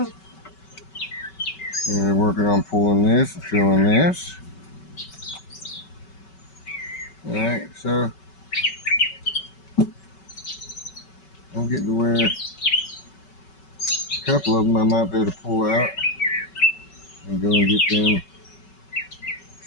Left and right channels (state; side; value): late; right; 5.3 ms